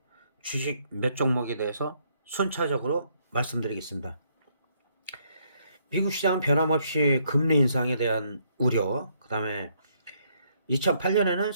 주식 몇 종목에 대해서 순차적으로 말씀드리겠습니다. 미국 시장은 변함없이 금리 인상에 대한 우려, 그 다음에 2008년에는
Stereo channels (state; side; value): inverted; both; correlation -0.71